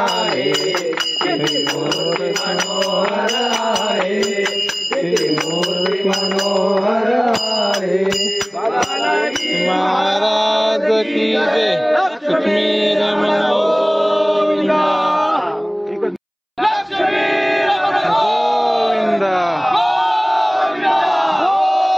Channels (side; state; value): both; identical; correlation 1.00